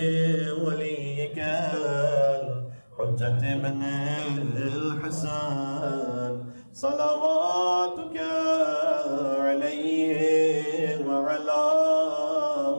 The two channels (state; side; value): inverted; both; correlation -1.00